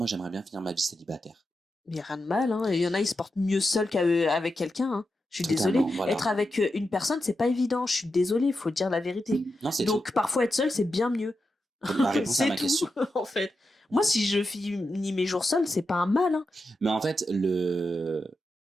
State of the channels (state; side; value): normal; both; correlation 0.88